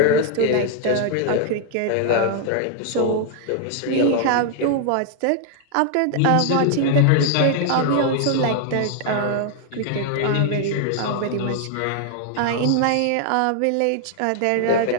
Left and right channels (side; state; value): both; different; correlation 0.00